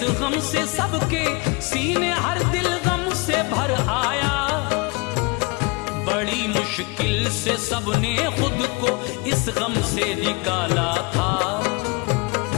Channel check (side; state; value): right; quieter; 28.4 dB